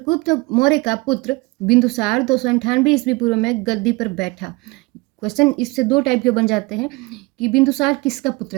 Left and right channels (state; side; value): quieter; left; 24.4 dB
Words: मौर्य का पुत्र बिंदुसार 298 ईस्वी पूर्व में गद्दी पर बैठा। क्वेश्चन इससे दो टाइप के बन जाते हैं कि बिंदुसार किसका